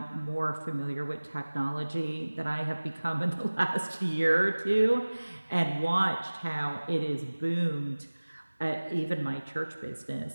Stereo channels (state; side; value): inverted; both; correlation -1.00